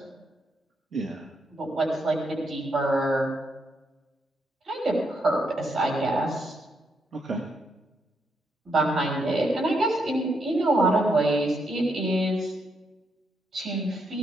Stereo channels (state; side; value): normal; both; correlation 0.78